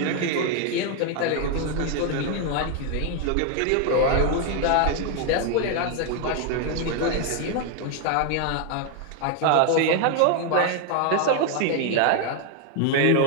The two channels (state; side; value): different; both; correlation 0.00